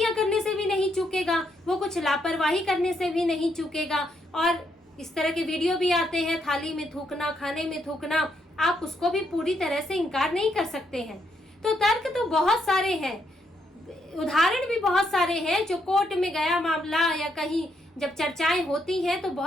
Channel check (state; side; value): normal; both; correlation 0.76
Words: करने से भी नहीं चूकेगा, वो कुछ लापरवाही करने से भी नहीं चूकेगा। और इस तरह के वीडियो भी आते हैं, थाली में थूकना, खाने में थूकना, आप उसको भी पूरी तरह से इनकार नहीं कर सकते हैं। तो तर्क तो बहुत सारे हैं, उदाहरण भी बहुत सारे हैं। जो कोर्ट में गया मामला या कहीं जब चर्चाएं होती हैं तो